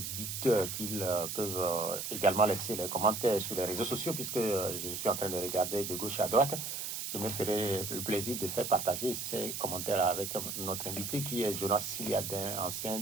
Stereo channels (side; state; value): right; noise; hiss, 4 dB below the sound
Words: qu'ils peuvent également laisser les commentaires sur les réseaux sociaux, puisque je suis en train de regarder de gauche à droite. Je me ferai le plaisir de faire partager ces commentaires avec notre invité qui est Jonas Siliadin,